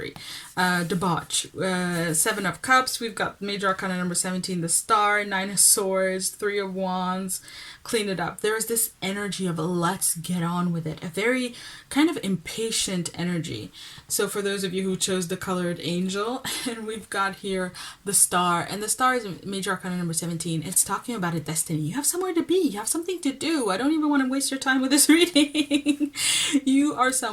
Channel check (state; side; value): identical; both; correlation 1.00